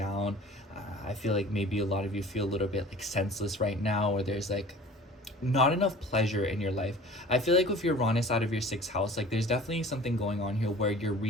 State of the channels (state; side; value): normal; both; correlation 0.44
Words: I feel like maybe a lot of you feel a little bit like senseless right now, or there's like not enough pleasure in your life. I feel like with your Uranus out of your 6th house, like there's definitely something going on here where you're